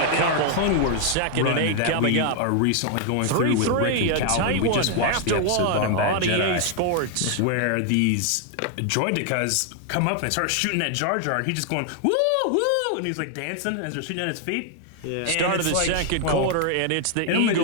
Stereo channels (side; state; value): both; different; correlation 0.00